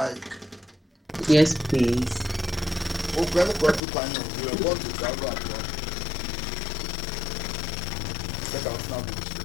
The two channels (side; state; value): right; drops out; at 3.8 s